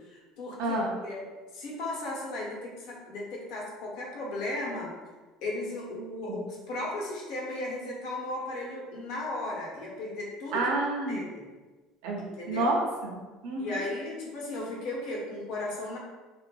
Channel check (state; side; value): normal; both; correlation 0.41